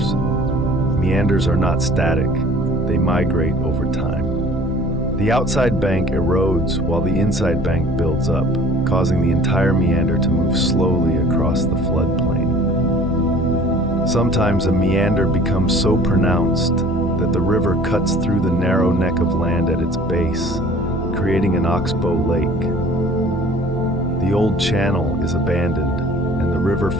Meanders are not static, they migrate over time. The outside bank erodes while the inside bank builds up, causing the entire meander to move slowly across the floodplain. Sometimes a meander becomes so pronounced that the river cuts through the narrow neck of land at its base, creating an oxbow lake. The old channel is abandoned, and the river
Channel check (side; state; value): both; normal; correlation 0.49